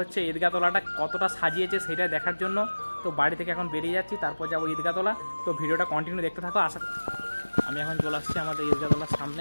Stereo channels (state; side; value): inverted; both; correlation -1.00